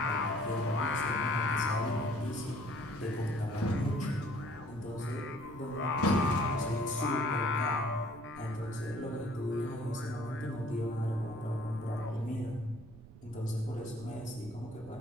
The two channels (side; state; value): right; noise; rumble, 18 dB below the sound